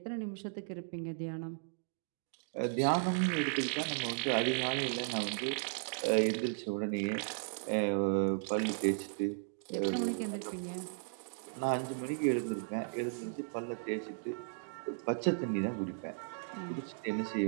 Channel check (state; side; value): silent; left; digital silence